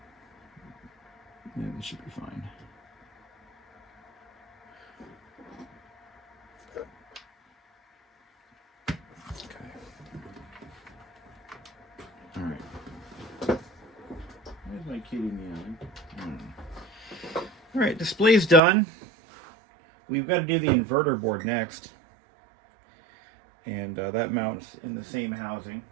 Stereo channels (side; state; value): left; drops out; at 18.6 s